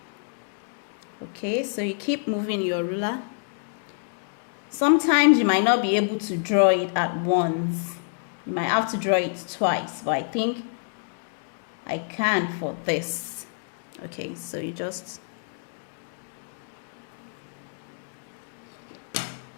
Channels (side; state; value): right; silent; digital silence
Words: Okay, so you keep moving your ruler. Sometimes you might not be able to draw it at once. You might have to draw it twice, but I think I can for this. Okay, so you just,